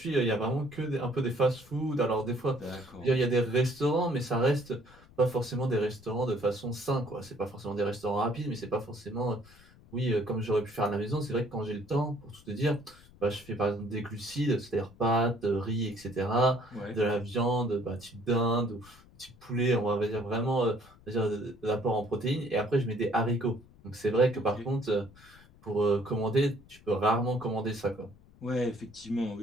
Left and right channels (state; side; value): noise; left; rumble, 25 dB below the sound